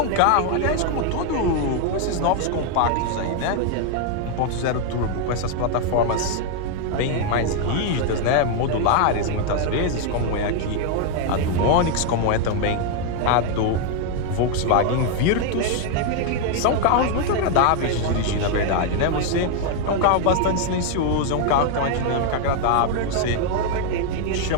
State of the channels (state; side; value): different; both; correlation 0.00